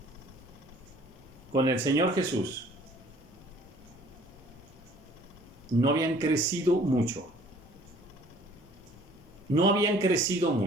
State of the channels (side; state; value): both; normal; correlation 0.54